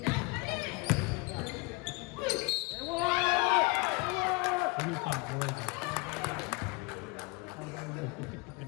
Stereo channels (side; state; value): right; quieter; 27.1 dB